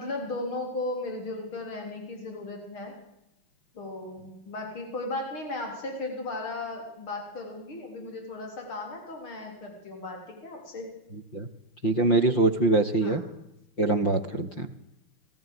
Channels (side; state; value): right; late; 5.7 ms